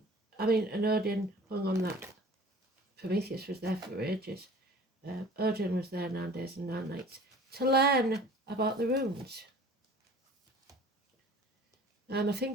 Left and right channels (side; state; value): both; normal; correlation 0.46